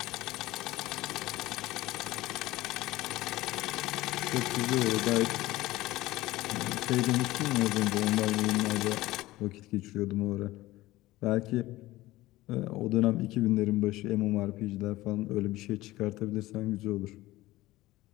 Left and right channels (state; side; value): quieter; right; 17.8 dB